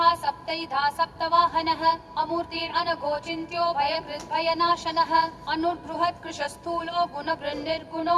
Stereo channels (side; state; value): both; identical; correlation 1.00